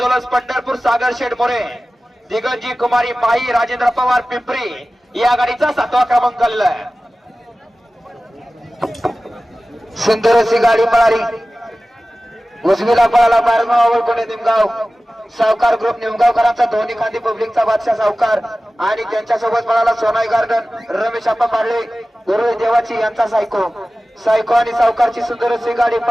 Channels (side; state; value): both; normal; correlation 0.96